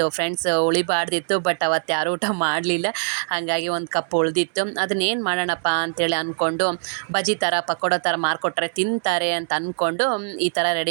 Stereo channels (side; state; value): left; silent; 64 dB below the other